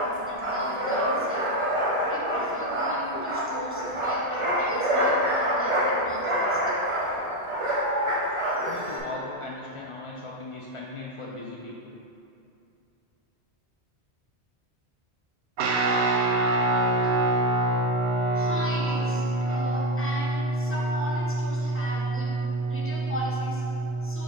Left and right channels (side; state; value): both; normal; correlation 0.14